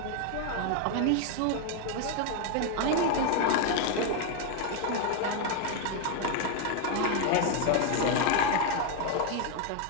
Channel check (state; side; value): different; both; correlation 0.01